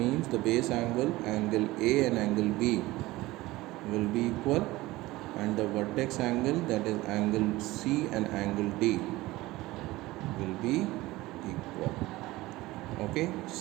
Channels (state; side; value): quieter; left; 18.9 dB